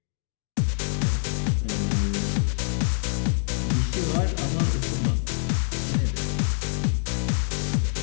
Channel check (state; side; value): silent; right; digital silence